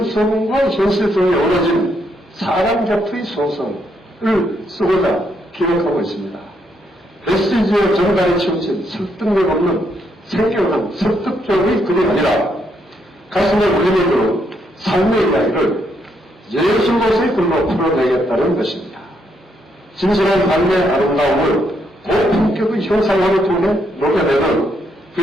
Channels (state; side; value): normal; both; correlation 0.76